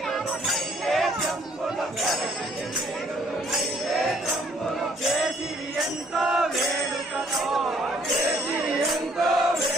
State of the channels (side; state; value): both; normal; correlation 0.63